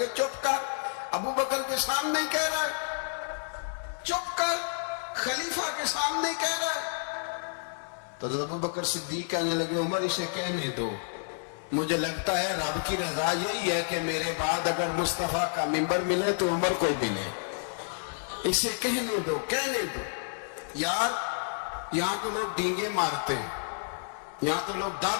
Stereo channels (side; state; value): right; silent; 58 dB below the other